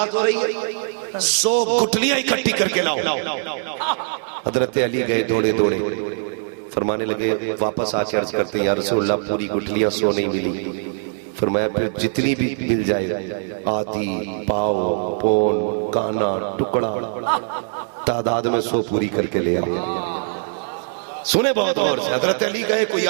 ہو رہی ہے 100 گٹھلیاں اکٹھی کر کے لاؤ۔ حضرت علی گئے دوڑے دوڑے، فرمانے لگے واپس آ کے عرض کرتے ہیں یا رسول اللہ پوری گٹھلیاں 100 نہیں ملی۔ فرمایا پھر جتنی بھی مل جائے، آدھی، پاؤ، پون، کانا، ٹکڑا، تعداد میں 100 پوری کر کے لے آؤ۔ سنے بہت غور سے، حضرت علی گئے، کوئی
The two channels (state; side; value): silent; left; digital silence